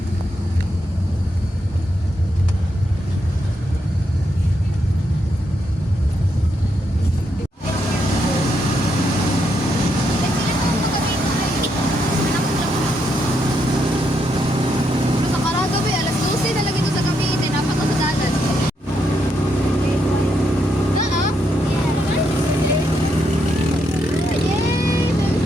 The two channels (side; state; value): both; normal; correlation 0.79